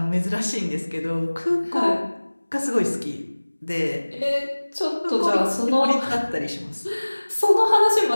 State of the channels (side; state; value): both; inverted; correlation -1.00